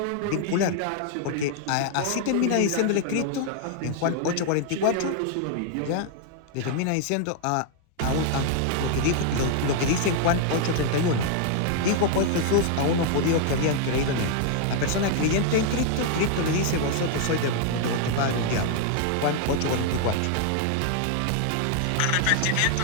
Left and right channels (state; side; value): different; both; correlation 0.00